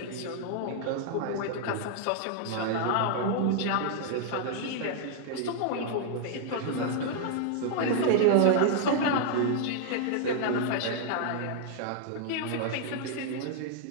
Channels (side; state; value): both; different; correlation -0.01